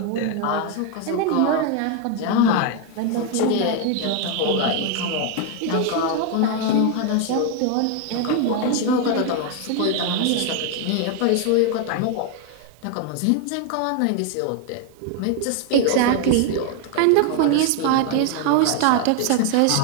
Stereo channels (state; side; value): different; both; correlation 0.01